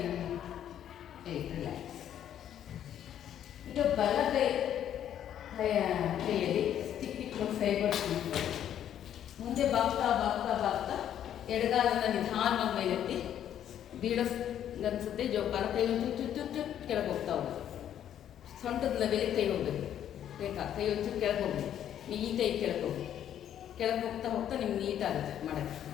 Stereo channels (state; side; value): quieter; right; 10.3 dB